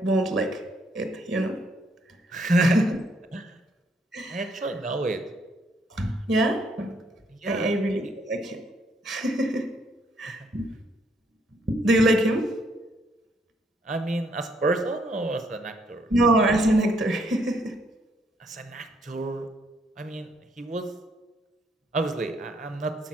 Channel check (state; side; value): normal; both; correlation 0.71